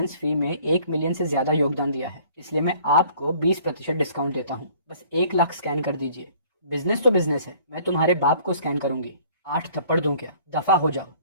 फी में 1 मिलियन से ज्यादा योगदान दिया है, इसलिए मैं आपको 20% डिस्काउंट देता हूँ। बस 1 लाख स्कैन कर दीजिए। बिजनेस तो बिजनेस है। मैं तुम्हारे बाप को स्कैन करूंगी। 8 थप्पड़ दूं क्या? दफा हो जाओ।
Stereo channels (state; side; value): inverted; both; correlation -0.55